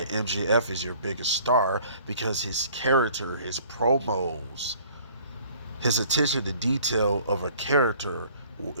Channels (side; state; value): both; inverted; correlation -0.54